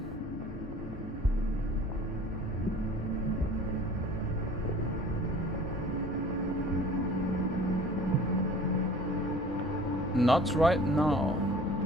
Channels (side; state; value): both; normal; correlation 0.47